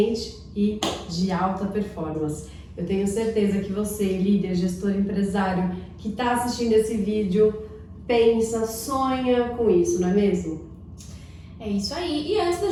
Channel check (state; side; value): identical; both; correlation 1.00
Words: e de alta performance. Eu tenho certeza que você, líder, gestor, empresário, que está assistindo esse vídeo, pensa, sonha com isso, não é mesmo? É isso aí. E antes da